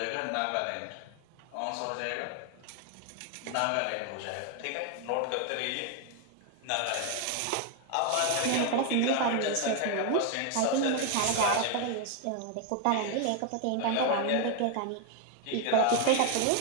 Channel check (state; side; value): different; both; correlation 0.01